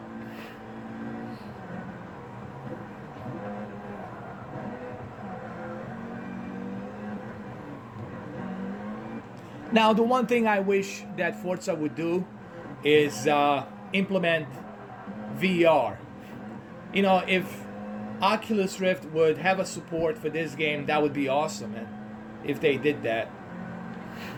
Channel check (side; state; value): both; identical; correlation 1.00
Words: Now, the one thing I wish that Forza would do is implement VR. You know, if Oculus Rift would have a support for this game, that would be awesome, man, if they did that.